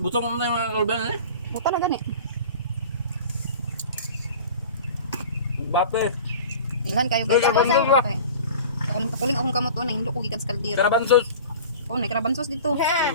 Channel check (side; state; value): both; inverted; correlation -0.40